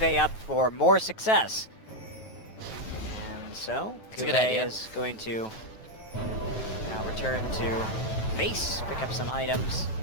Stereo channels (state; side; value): late; right; 9.2 ms